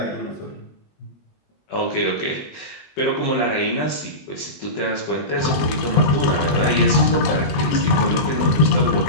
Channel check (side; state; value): right; late; 20 ms